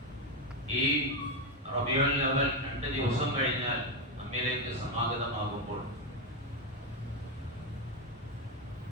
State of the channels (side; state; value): both; normal; correlation 0.08